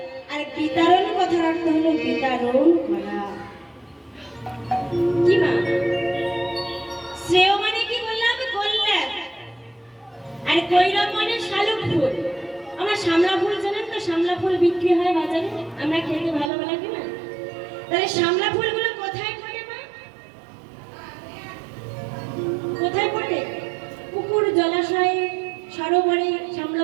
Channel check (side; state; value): left; drops out; at 16.5 s